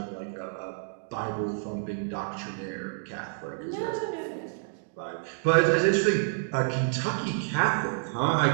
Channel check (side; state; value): left; silent; digital silence